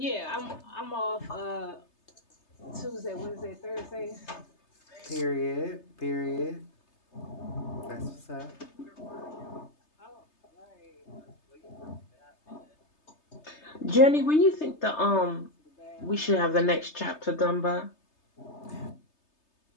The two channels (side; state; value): right; late; 3.3 ms